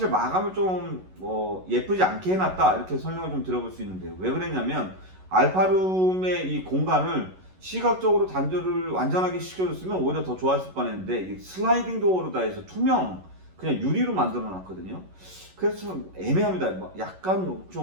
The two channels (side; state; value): left; late; 11 ms